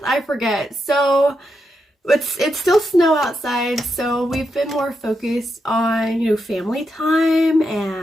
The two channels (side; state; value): both; normal; correlation 0.84